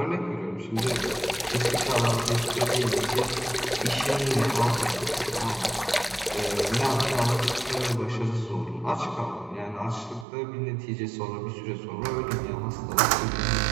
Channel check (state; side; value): drops out; left; at 10.2 s